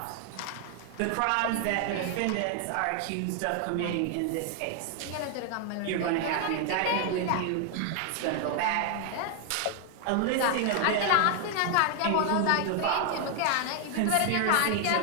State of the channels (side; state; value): both; different; correlation 0.00